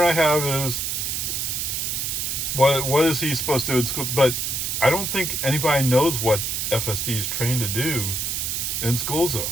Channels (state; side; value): noise; right; hiss, 1 dB below the sound